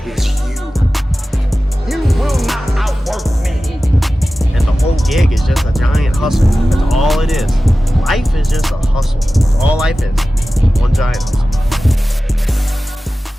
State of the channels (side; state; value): both; normal; correlation 0.95